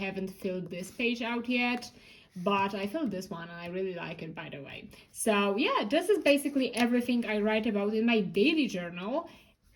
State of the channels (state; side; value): identical; both; correlation 1.00